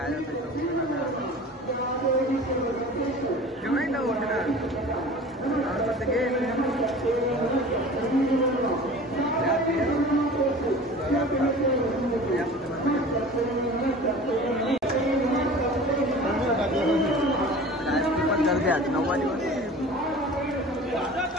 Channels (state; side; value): normal; both; correlation 0.40